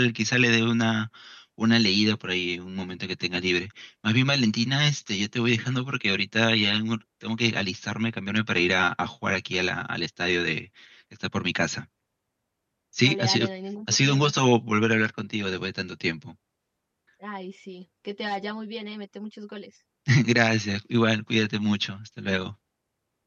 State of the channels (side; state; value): both; identical; correlation 1.00